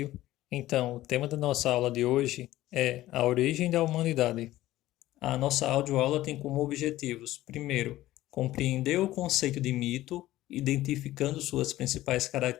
Então, o tema da nossa aula de hoje é a origem da humanidade. A nossa audioaula tem como objetivos: primeiro, compreender o conceito de mito, identificando suas principais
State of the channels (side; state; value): right; quieter; 15.6 dB